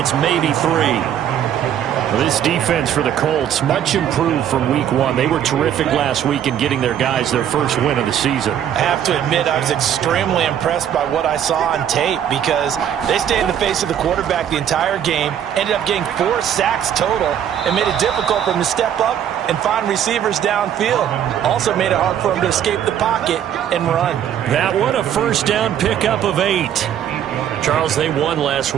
maybe 3. This defense for the Colts, much improved from week 1. They were terrific last week in getting their guys their first win of the season. I have to admit, I was extremely impressed by what I saw on tape because they stayed in the face of the quarterback the entire game, ended up getting 4 sacks total, and made it difficult for him to step up and find receivers downfield. Also made it hard for him to escape the pocket and run. That one, a first down pickup of 8. Charles, they won last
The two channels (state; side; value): quieter; left; 9.8 dB